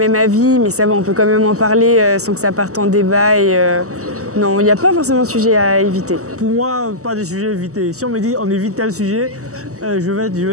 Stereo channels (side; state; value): left; late; 0.65 ms